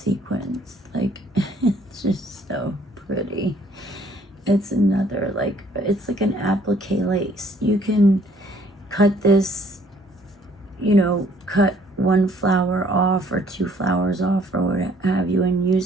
Like, it's just so pretty. It's another, like, it's like an applique lace. You can cut this, you know, cut one flower off or two flowers off or what have you, and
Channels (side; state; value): both; normal; correlation 0.61